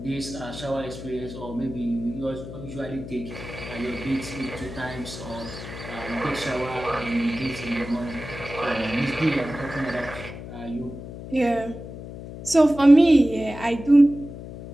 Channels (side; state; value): left; noise; hum, 11 dB below the sound